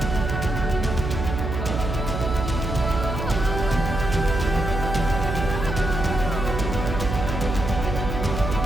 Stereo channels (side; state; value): right; noise; hum, 4 dB below the sound